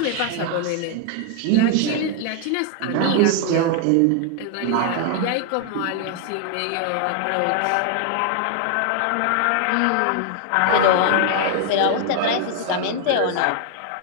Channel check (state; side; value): different; both; correlation 0.00